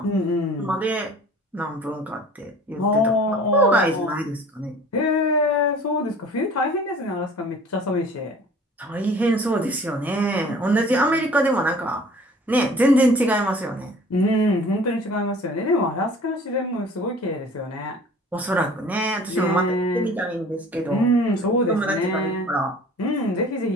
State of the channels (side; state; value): both; normal; correlation 0.47